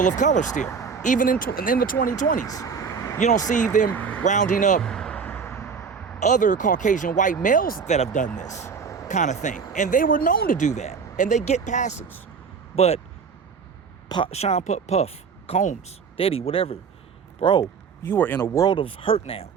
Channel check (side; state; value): left; quieter; 5.8 dB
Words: of color still, even in the 2020s. You don't see them rounding up other Caucasian white males that have done this kind of thing, and they were known to do that, and they get passes. But Sean Puff, Combs, Diddy, whatever, bro, you are in a world of hurt now.